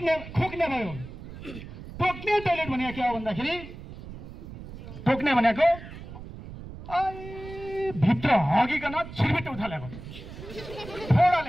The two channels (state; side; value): noise; right; rumble, 13 dB below the sound